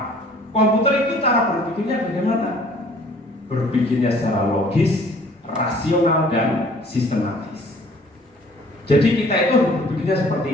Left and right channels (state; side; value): normal; both; correlation 0.54